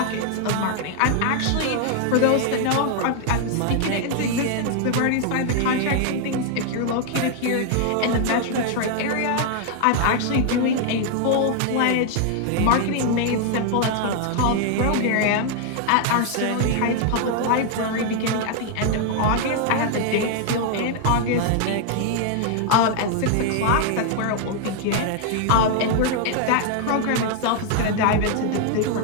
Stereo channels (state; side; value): different; both; correlation 0.00